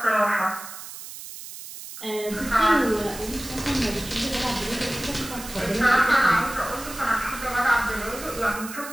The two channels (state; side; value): noise; right; hiss, 12 dB below the sound